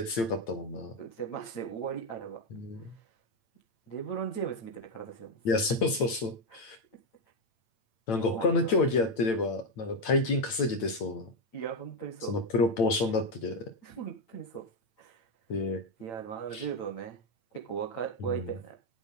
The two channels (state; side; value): late; right; 8.9 ms